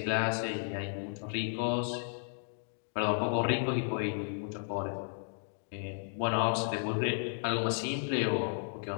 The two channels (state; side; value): silent; right; digital silence